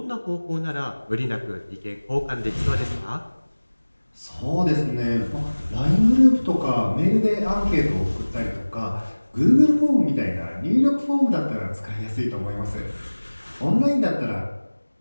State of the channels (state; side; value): inverted; both; correlation -1.00